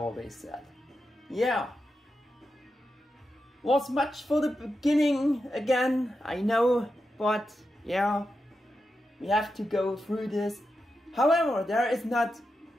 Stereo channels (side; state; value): both; normal; correlation 0.88